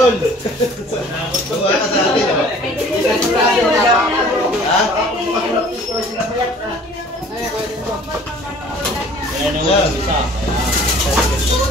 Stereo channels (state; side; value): normal; both; correlation 0.50